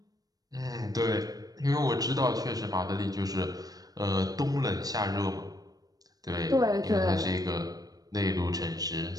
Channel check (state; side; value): late; left; 0.18 ms